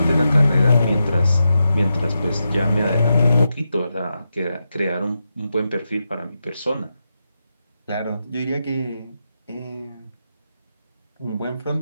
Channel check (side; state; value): both; inverted; correlation -0.87